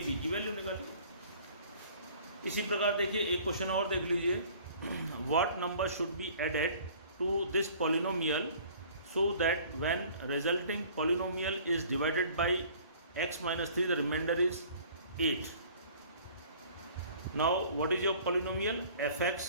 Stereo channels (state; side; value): inverted; both; correlation -0.51